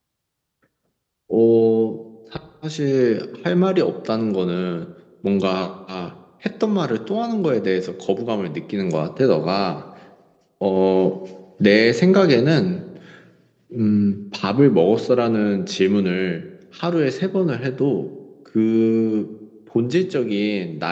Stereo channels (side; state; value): both; identical; correlation 1.00